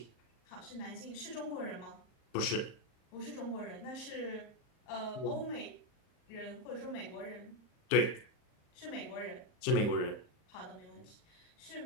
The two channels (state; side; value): late; right; 39 ms